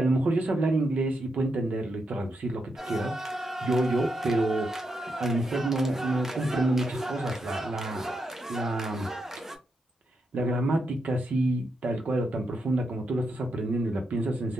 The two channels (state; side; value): normal; both; correlation 0.83